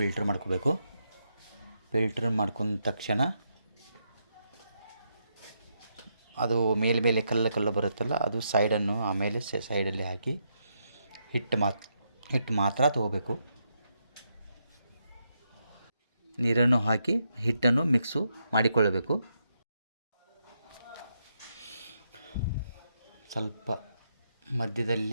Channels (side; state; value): both; inverted; correlation -0.81